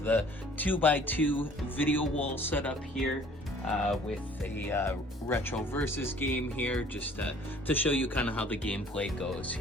the 2x2 video wall set up here with a retro versus game here, just to show you kind of how the gameplay goes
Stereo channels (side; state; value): both; normal; correlation 0.54